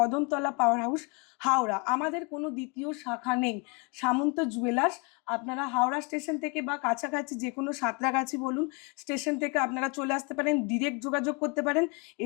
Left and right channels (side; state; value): right; quieter; 31.3 dB